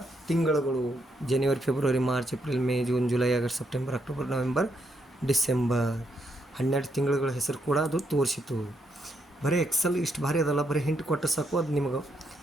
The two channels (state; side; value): normal; both; correlation 0.78